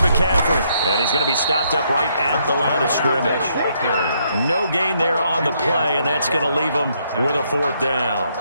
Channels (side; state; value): both; inverted; correlation -0.73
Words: And he's going to be stopped up right at the line of scrimmage. No gain there on the play, and that's going to leave him with a 4th down.